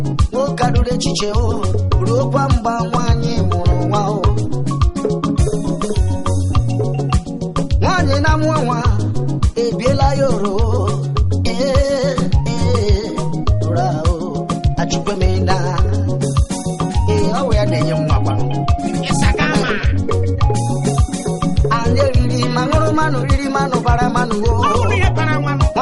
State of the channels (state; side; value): identical; both; correlation 1.00